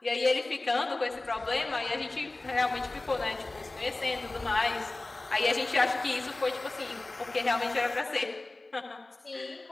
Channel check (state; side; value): quieter; right; 3.0 dB